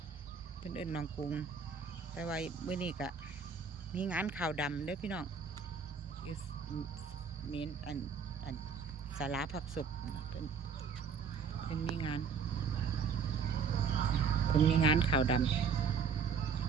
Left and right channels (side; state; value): left; quieter; 5.9 dB